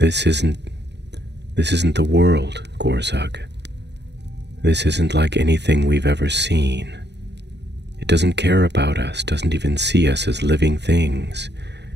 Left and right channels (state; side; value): late; left; 0.50 ms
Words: isn't the world, Gorzug. This isn't like anything we've ever seen. It doesn't care about us, doesn't even see us as living things.